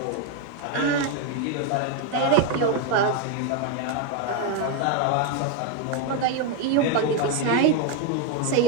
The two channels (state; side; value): different; both; correlation 0.01